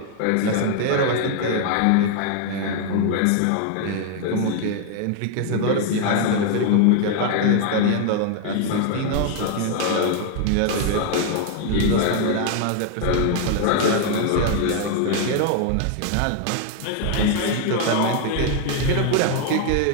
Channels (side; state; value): both; different; correlation 0.00